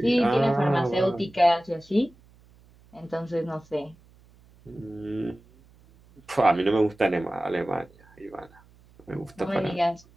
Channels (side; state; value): right; noise; hum, 28 dB below the sound